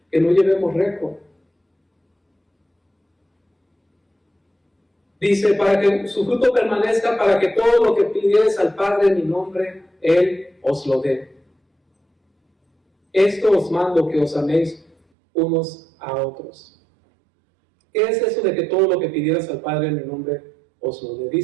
Que no llevemos récord. Dice, para que su fruto permanezca, para que todo lo que pidieres al Padre en mi nombre, Él os lo dé. Esto os mando, que os améis unos a otros. ¿Qué es eso de que todo lo que pidieras al Padre en mi nombre os lo dé?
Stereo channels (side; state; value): left; drops out; at 15.0 s